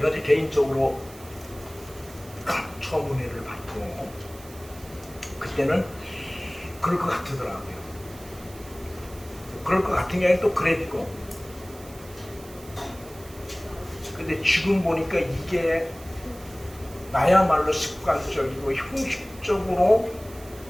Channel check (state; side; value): noise; right; hiss, 20 dB below the sound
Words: 이제 개인적으로 처음 은혜를 받고 그때는 그럴 것 같더라고요. 그럴 것 같은 게 아니라 또 그랬고, 근데 지금 보니까 이게 나야말로 습관적이고 형식적으로